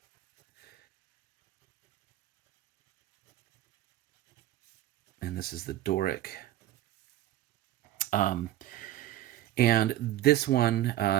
And this is the Doric. And this one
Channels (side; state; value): left; quieter; 13.7 dB